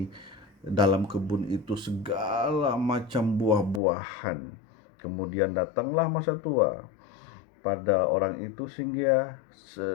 dalam kebun itu segala macam buah-buahan. Kemudian datanglah masa tua pada orang itu sehingga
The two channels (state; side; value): drops out; right; at 3.8 s